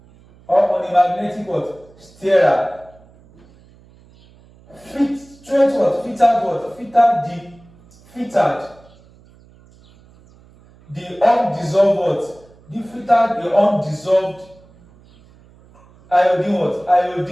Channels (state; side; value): noise; right; hum, 27 dB below the sound